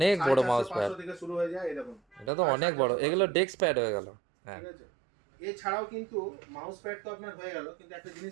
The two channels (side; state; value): left; drops out; at 2.3 s